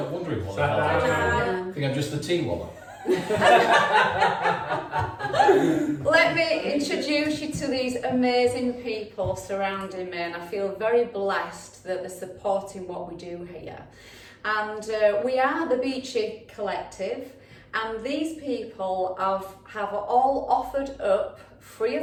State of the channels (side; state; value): both; identical; correlation 1.00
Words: not wondering what Sat I think I'm just the tea woman. Let me introduce you to these amazing people surrounding me, and I feel very blessed that they're supporting what we do here. And we are the Beachy Collective, and these people have all offered up free